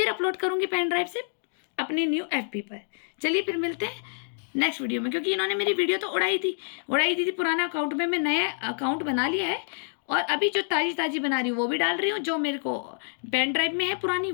अपलोड करूंगी पेन ड्राइव से अपनी न्यू FB पर। चलिए फिर मिलते हैं नेक्स्ट वीडियो में, क्योंकि इन्होंने मेरी वीडियो तो उड़ाई दी थी पुराना अकाउंट में। मैं नया अकाउंट बना लिया है और अभी जो ताज़ी बना रही हूँ वो भी डाल रही हूँ, जो मेरे को पेन ड्राइव में है पुरानी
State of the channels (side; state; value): right; silent; 60 dB below the other